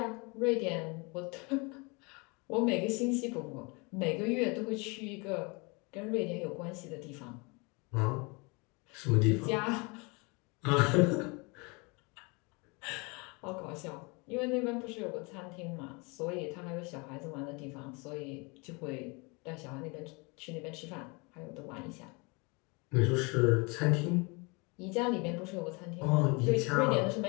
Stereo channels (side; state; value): right; quieter; 29.2 dB